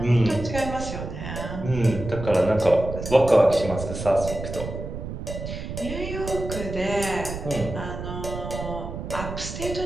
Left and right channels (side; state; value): right; noise; rumble, 7 dB below the sound